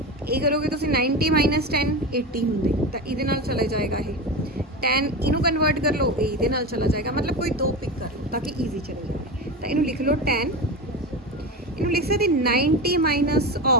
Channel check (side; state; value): both; normal; correlation 0.23